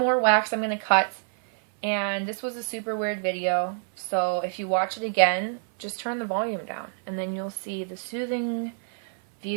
wax I'm going to cut. And this was a super weird video, so if you watch it again, just turn the volume down, and then you'll see the soothing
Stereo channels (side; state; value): left; silent; 57 dB below the other